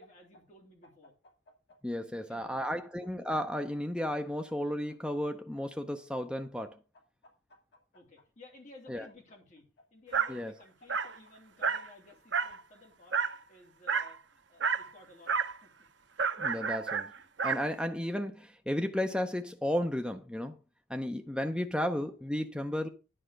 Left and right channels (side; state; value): both; normal; correlation 0.65